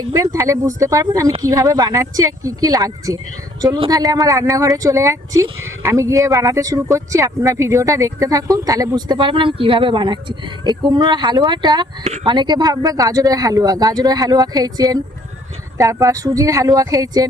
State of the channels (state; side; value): normal; both; correlation 0.61